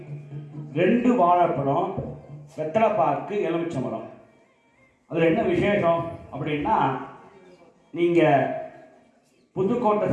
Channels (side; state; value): both; identical; correlation 1.00